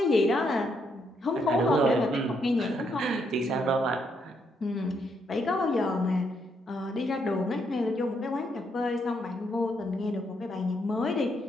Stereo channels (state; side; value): normal; both; correlation 0.76